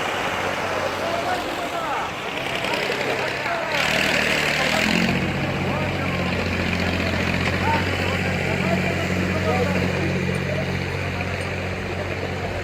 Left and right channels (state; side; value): identical; both; correlation 1.00